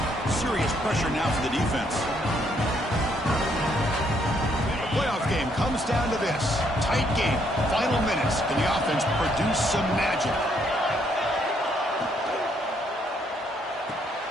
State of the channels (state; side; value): normal; both; correlation 0.71